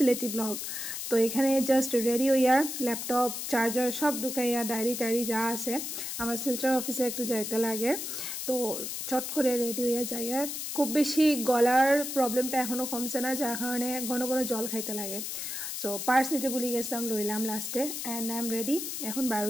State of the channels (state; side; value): noise; left; hiss, 5 dB below the sound